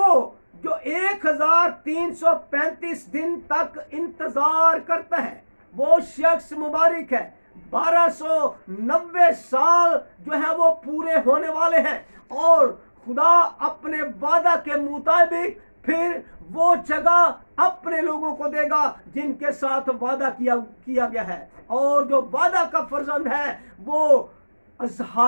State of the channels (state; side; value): inverted; both; correlation -1.00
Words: جو 1335 دن تک انتظار کرتا ہے، وہ شخص مبارک ہے۔ 1290 سال جو ہے وہ پورے ہونے والے ہیں، اور خدا اپنے وعدہ کے مطابق پھر وہ جگہ اپنے لوگوں کو دے گا جن کے ساتھ وعدہ کیا گیا ہے، اور جو وعدہ کا فرزند ہے وہ